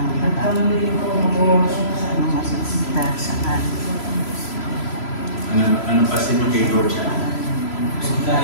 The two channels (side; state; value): right; late; 3.0 ms